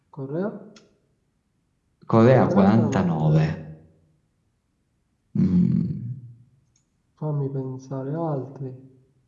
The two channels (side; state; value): both; identical; correlation 1.00